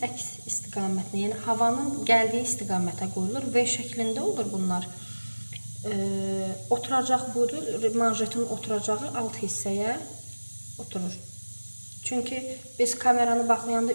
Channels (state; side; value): inverted; both; correlation -1.00